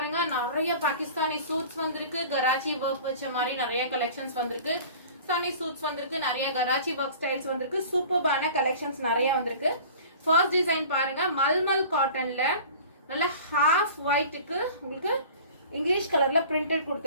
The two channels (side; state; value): both; inverted; correlation -0.42